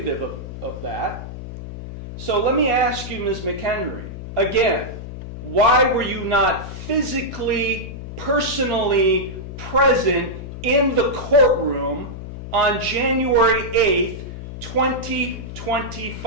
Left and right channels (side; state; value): left; noise; hum, 10 dB below the sound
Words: of that. So let me ask you, Ms. McHenry, again, why were you not physically, personally present in the courtroom on January 8th,